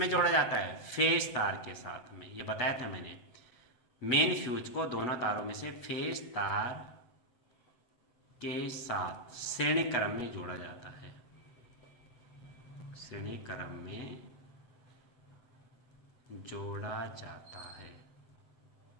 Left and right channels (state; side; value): late; right; 8.1 ms